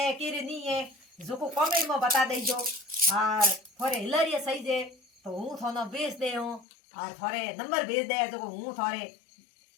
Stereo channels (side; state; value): right; drops out; at 6.7 s